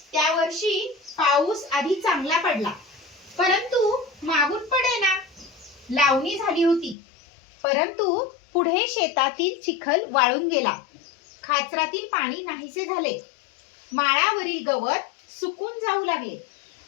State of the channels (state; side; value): drops out; right; at 7.0 s